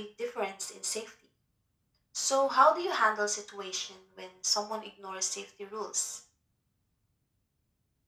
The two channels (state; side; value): identical; both; correlation 1.00